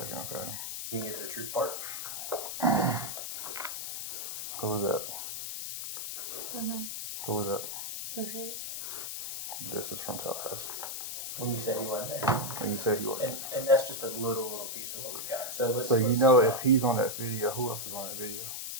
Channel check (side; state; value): left; noise; hiss, 5 dB below the sound